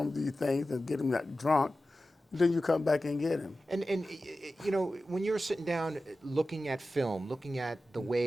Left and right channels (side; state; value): both; normal; correlation 0.94